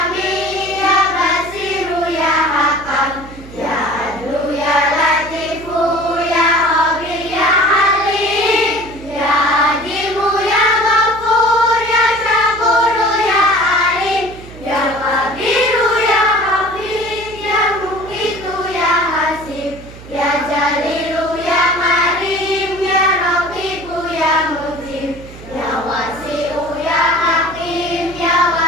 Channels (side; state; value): right; noise; hum, 17 dB below the sound